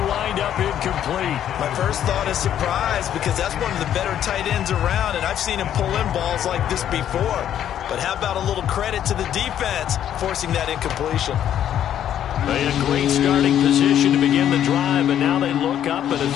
wind up incomplete. My first thought is surprise because that's one of the better tight ends around, and I've seen him pull in balls like this before. But how about a little credit to the defense forcing that incompletion? They had a great starting position to begin the drive, and now they look up at a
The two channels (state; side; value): quieter; right; 10.4 dB